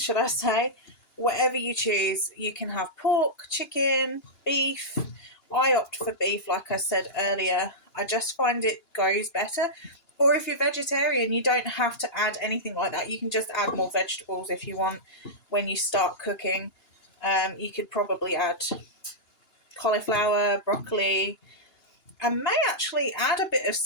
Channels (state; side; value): late; right; 2.9 ms